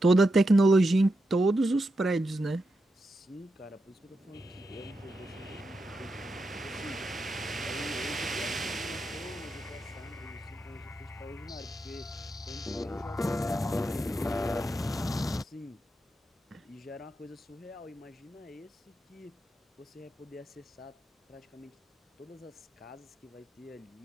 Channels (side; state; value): both; normal; correlation 0.86